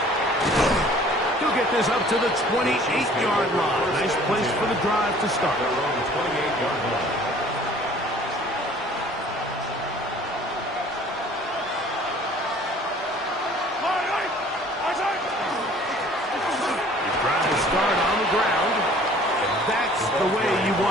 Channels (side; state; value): both; normal; correlation 0.52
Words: He'll get this up to the 28-yard line. Nice place for the drive to start. They're on the 28-yard line. Your drive will start on the ground. And that's the way you